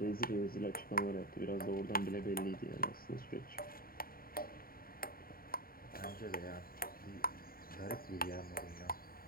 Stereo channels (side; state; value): right; late; 0.43 ms